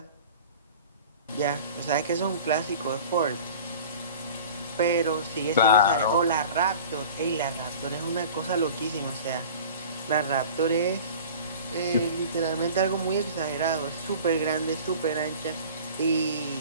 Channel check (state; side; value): inverted; both; correlation -0.41